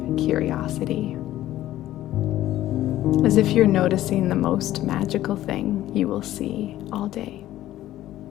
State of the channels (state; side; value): quieter; right; 14.1 dB